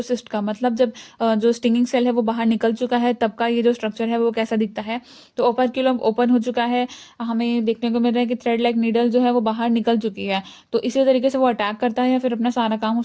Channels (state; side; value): identical; both; correlation 1.00